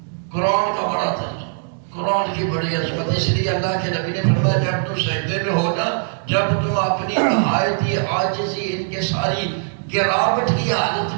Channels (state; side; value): silent; left; digital silence